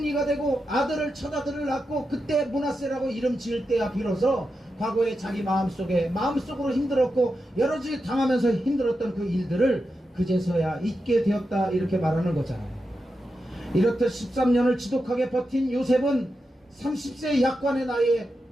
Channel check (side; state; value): both; normal; correlation 0.88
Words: 되고 아들을 첫 아들을 낳고 그때 므낫세라고 이름 지을 때야 비로소 과거에 자기 마음속으로 힘들었고 여러 가지 당하면서 힘들었던 그 일들을 그제서야 잊게 되었다 이렇게 말하는 거잖아요. 이렇듯 13년을 지독하게 버틴 요셉은 30세 약관의 나이에